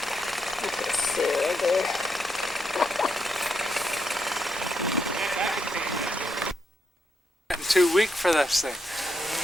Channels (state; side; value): normal; both; correlation 0.80